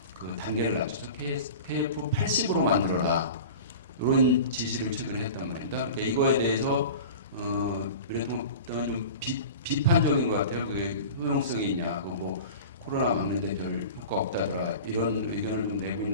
그 단계를 낮춰서 KF80으로 만들어라. 이런 지시를 최근에 했단 말입니다. 그러니까 이거에 대해서 미래통합당은 좀 비판적인 것 같아요. 그게 효용성이 있냐, 뭐 코로나 막는데 별 효과 없다더라 이런 의견을 좀 내고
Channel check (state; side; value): inverted; both; correlation -0.36